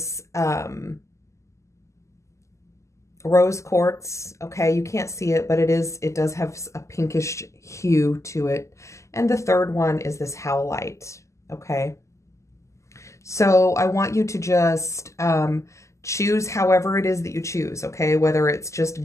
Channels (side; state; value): right; late; 0.14 ms